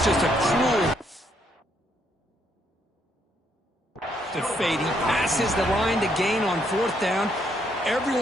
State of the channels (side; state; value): both; normal; correlation 0.73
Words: just a cruel fade. He passes the line to gain on fourth down.